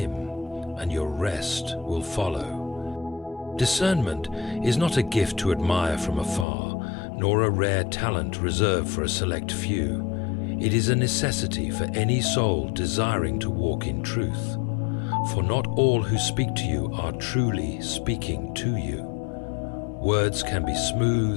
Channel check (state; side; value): drops out; right; at 6.5 s